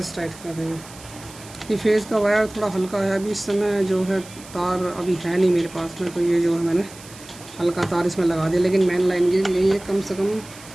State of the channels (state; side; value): noise; right; hiss, 19 dB below the sound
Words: टाइट कर देंगे। ये फेज़ का वायर थोड़ा हल्का है, अभी इस समय जो है तार अभी है नहीं मेरे पास में, तो ये जो है मैंने हल्का तार इसमें लगा दिया। लेकिन मेन लाइन के लिए ये कम से कम